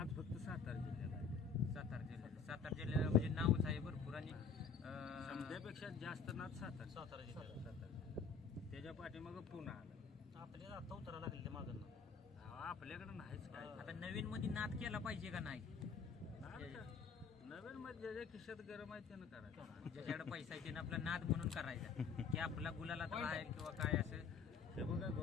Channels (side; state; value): right; quieter; 5.7 dB